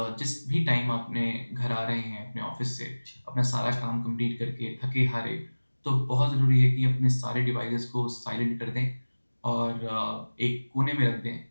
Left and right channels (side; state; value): both; inverted; correlation -1.00